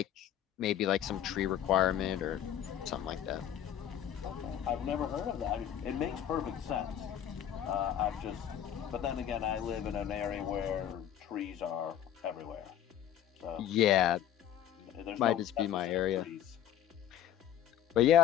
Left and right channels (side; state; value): right; quieter; 10.4 dB